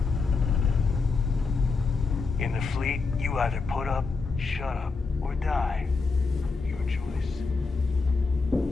In the fleet, you either put up, shut up, or die. Your choice.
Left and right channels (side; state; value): right; quieter; 4.3 dB